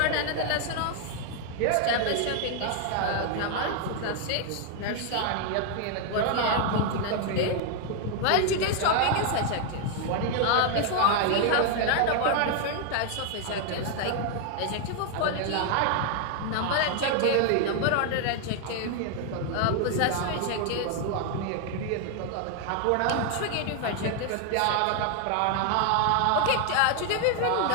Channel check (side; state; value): both; different; correlation 0.00